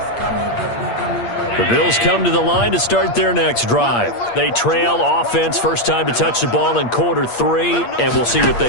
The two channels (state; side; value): late; right; 8.5 ms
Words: The Bills come to the line to start their next drive. They trail offense, first time to touch the ball in quarter 3, and we'll see what